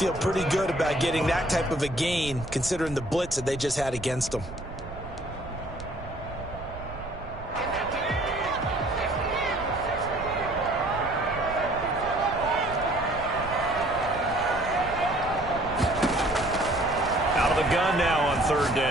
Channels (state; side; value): noise; right; rumble, 13 dB below the sound